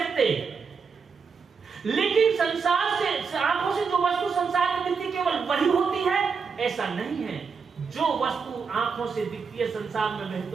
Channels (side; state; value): left; quieter; 5.5 dB